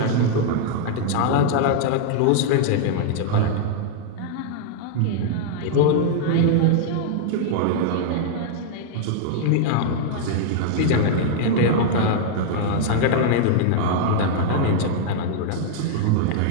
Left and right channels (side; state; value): both; different; correlation -0.01